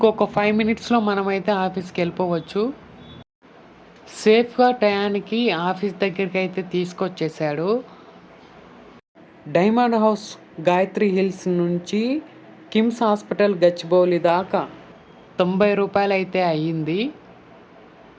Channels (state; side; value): identical; both; correlation 1.00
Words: 5 మినిట్స్లో మనమైతే ఆఫీస్కి వెళ్ళిపోవచ్చు. సేఫ్గా టయానికి ఆఫీస్ దగ్గరికి అయితే తీసుకొచ్చేసాడు. డైమండ్ హౌస్ గాయత్రి హిల్స్ నుంచి కిమ్స్ హాస్పిటల్ గచ్చిబౌలి దాకా 90 రూపాయలు అయితే అయ్యింది.